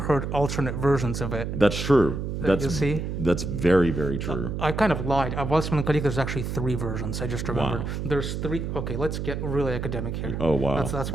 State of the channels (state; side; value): noise; right; hum, 4 dB below the sound